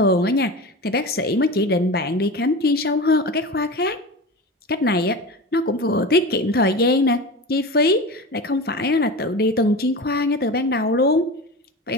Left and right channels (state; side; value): normal; both; correlation 0.29